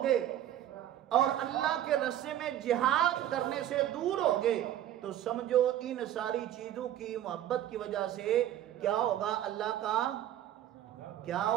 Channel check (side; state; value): left; quieter; 11.9 dB